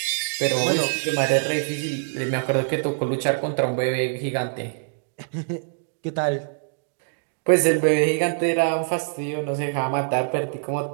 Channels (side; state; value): left; silent; digital silence